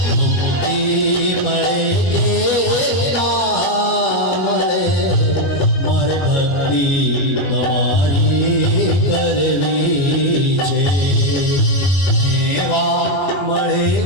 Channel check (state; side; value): late; right; 22 ms